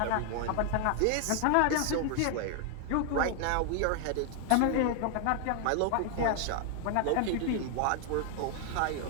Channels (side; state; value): both; different; correlation 0.00